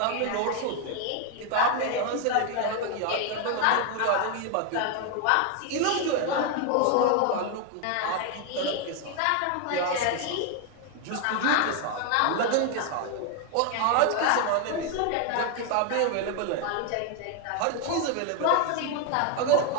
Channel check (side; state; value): both; different; correlation 0.01